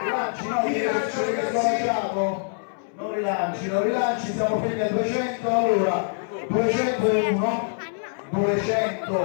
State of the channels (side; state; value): right; silent; 62 dB below the other